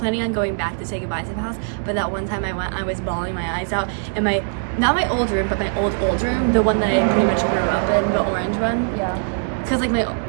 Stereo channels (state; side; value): silent; left; digital silence